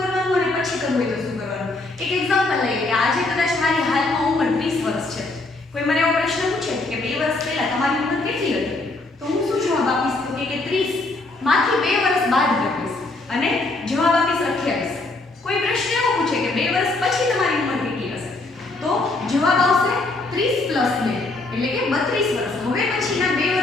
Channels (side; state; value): right; quieter; 3.1 dB